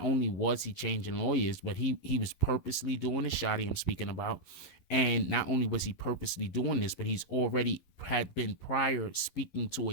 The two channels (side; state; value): right; late; 11 ms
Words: only was he changing lawyers, but he was purposely doing the Shotti I'm speaking about. And not only was he purposely doing this, but he's already had been prior speaking to